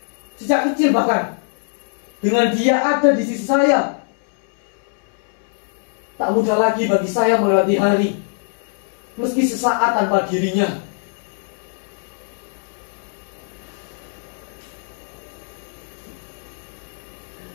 sejak kecil, bahkan dengan dia ada di sisi saya. Tak mudah lagi bagi saya melewati hari meski sesaat tanpa dirinya.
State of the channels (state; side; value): silent; right; digital silence